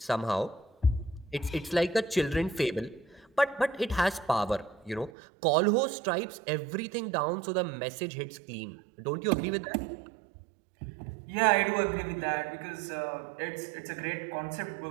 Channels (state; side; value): drops out; left; at 5.1 s